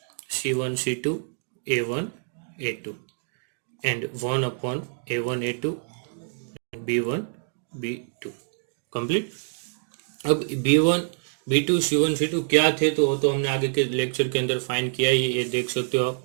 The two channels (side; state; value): left; silent; digital silence